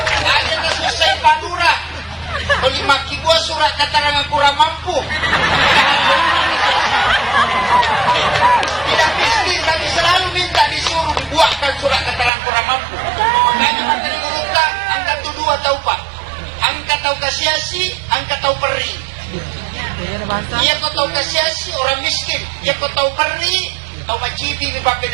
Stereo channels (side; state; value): left; drops out; at 12.3 s